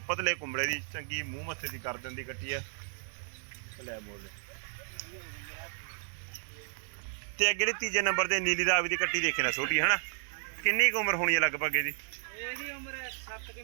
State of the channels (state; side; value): silent; left; 56 dB below the other